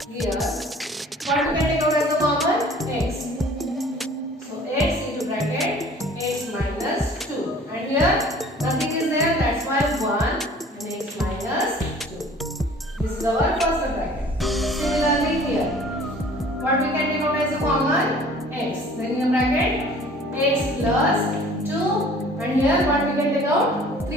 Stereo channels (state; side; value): normal; both; correlation 0.50